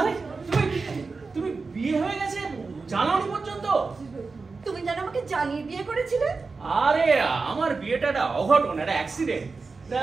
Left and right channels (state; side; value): quieter; left; 4.3 dB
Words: তুমি বিয়ে হয়ে গেছে জানাওনি পর্যন্ত? তুমি যেন আমাকে জানিয়ে বিয়ে করেছিলে। আরে আমার বিয়েটা একটা অঘটন, একটা অ্যাক্সিডেন্ট।